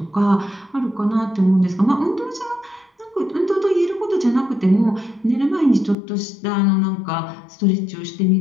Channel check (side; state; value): right; drops out; at 6.0 s